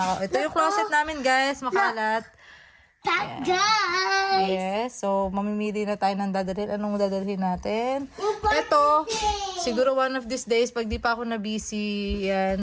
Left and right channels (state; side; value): identical; both; correlation 1.00